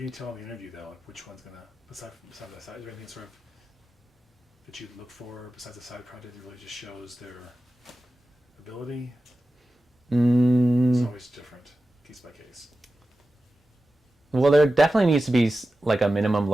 you tell in the interview, though, like which one's going to, besides that side, is there anything sort of that you'd look for besides the side project that really just shows their ability? It's always different, case by case. Well, there definitely needs to be like a minimum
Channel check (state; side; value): normal; both; correlation 0.94